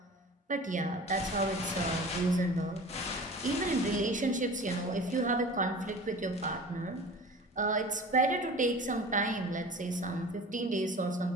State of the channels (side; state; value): both; normal; correlation 0.39